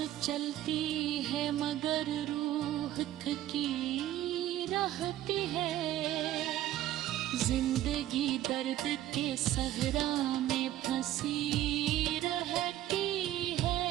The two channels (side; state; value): left; quieter; 13.4 dB